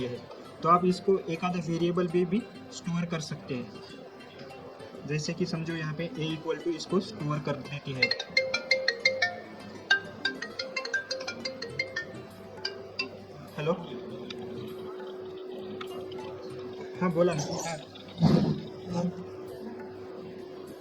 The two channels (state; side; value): identical; both; correlation 1.00